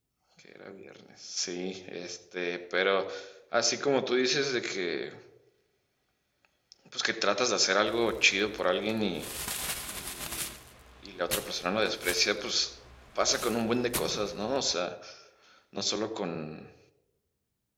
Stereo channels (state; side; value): identical; both; correlation 1.00